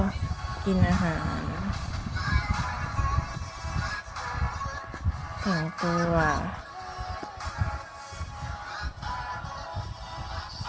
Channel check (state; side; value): identical; both; correlation 1.00